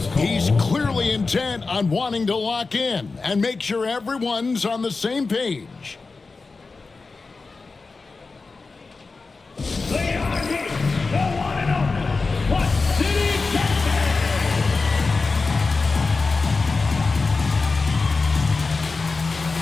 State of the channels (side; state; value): right; quieter; 4.0 dB